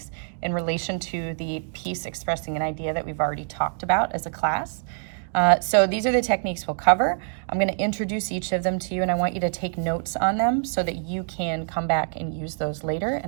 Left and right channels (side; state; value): left; silent; 59 dB below the other